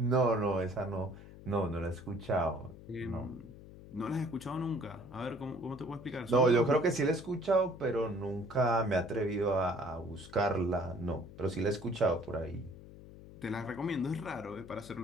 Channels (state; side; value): noise; left; hum, 17 dB below the sound